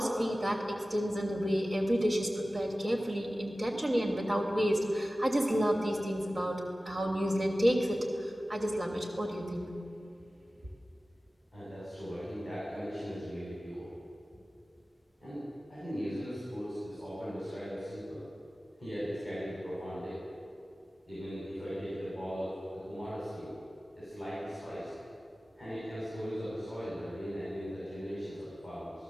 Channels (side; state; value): both; normal; correlation 0.96